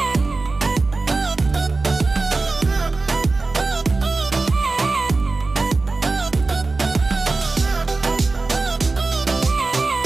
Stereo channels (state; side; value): quieter; left; 3.6 dB